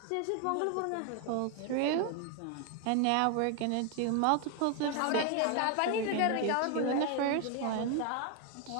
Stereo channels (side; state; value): both; different; correlation 0.01